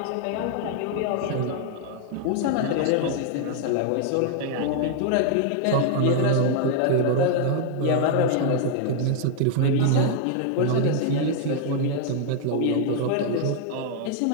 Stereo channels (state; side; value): different; both; correlation 0.00